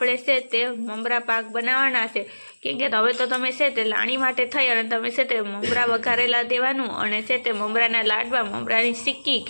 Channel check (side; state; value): both; inverted; correlation -1.00